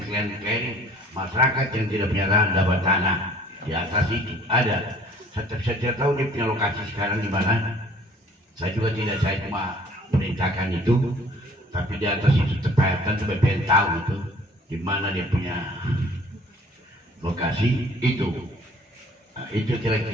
masyarakat yang tidak punya lahan dapat tanah di atas itu ada. Saya tidak tahu dia punya lokasi sekarang di mana. Saya juga tidak, saya cuma perintahkan itu, tapi di atas itu terpahatan sampai pengen tahu itu di mana dia punya lokasi itu. Nah, itu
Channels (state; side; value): normal; both; correlation 0.53